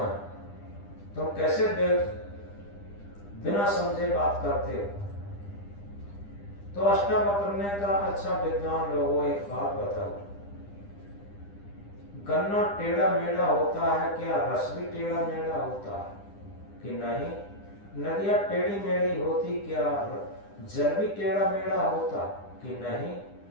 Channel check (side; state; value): right; late; 9.9 ms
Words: तुम कैसे बिना समझे बात करते हो। तो अष्टावक्र ने कहा, अच्छा विद्वान लोगों एक बात बताओ, गन्ना टेढ़ा मेढ़ा होता है क्या? रस भी टेढ़ा मेढ़ा होता है कि नहीं? नदियां टेढ़ी मेढ़ी होती क्या? जल भी टेढ़ा मेढ़ा होता कि नहीं?